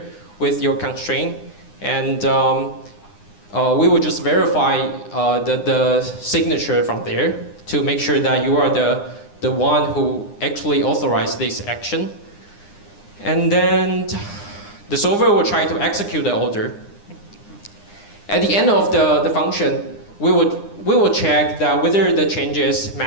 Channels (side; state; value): right; late; 9.8 ms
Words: with your constraint. And we will just verify the signature from there to make sure that you are the one who actually authorized this action. And then the solver will try to execute the order. At the end of the function, we will check that whether the changes